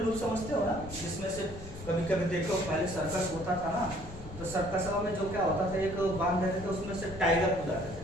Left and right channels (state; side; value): noise; left; rumble, 14 dB below the sound